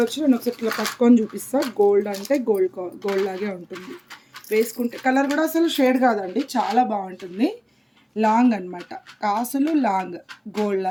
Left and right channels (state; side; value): identical; both; correlation 1.00